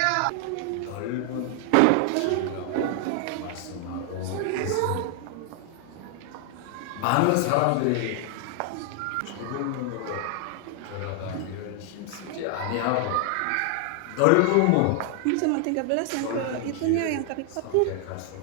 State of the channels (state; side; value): different; both; correlation 0.00